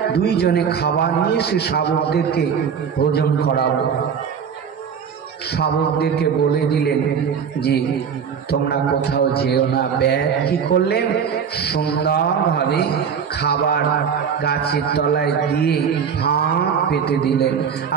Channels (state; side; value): quieter; left; 7.1 dB